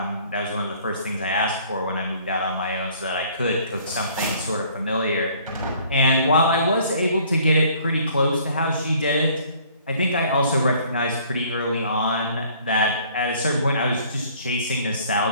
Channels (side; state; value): both; inverted; correlation -0.57